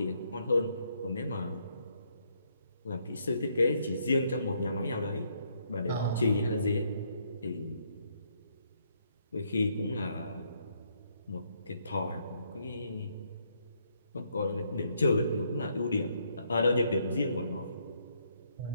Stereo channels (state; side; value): inverted; both; correlation -0.72